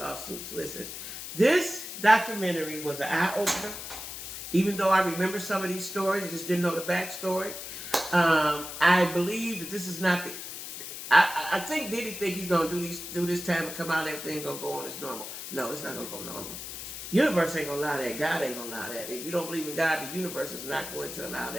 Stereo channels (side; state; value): left; noise; hiss, 9 dB below the sound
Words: Listen, this documentary was an eye-opener. Even though I remember some of these stories, I just didn't know the backstory. I believe that this is not the... I think Diddy think he's going to do this time and come out and everything's going to go on as normal. No, it's not going to go normal. Universe ain't going to allow that. God ain't going to allow that. If you don't believe in God, the universe is not going to allow